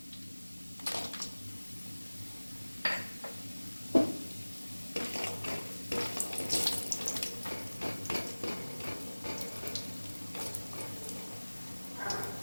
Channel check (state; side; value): inverted; both; correlation -1.00